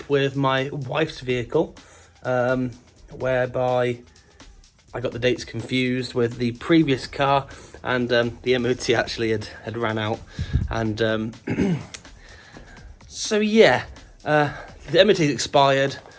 with my wife's vehicle, whereby I got the dates confused with the previous car, and the MOT actually had ran out, and the MOT expired.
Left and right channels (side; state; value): both; identical; correlation 1.00